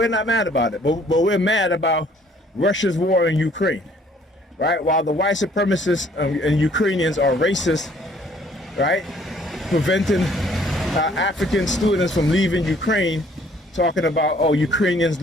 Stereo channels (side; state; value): both; normal; correlation 0.60